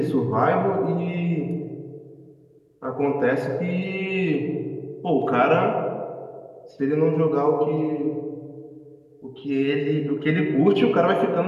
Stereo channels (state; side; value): identical; both; correlation 1.00